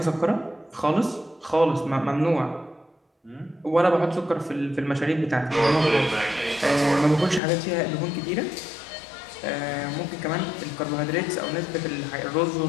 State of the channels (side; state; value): right; drops out; at 7.4 s